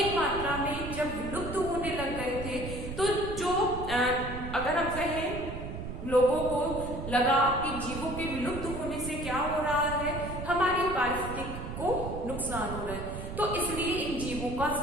मात्रा में जब विलुप्त होने लग गए थे, तो जो अगर हम कहें लोगों को लगा कि जीवों के विलुप्त होने से क्या हो रहा है, हमारी पारिस्थितिकी को नुकसान हो रहा है, तो इसलिए इन जीवों का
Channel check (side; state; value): right; noise; rumble, 7 dB below the sound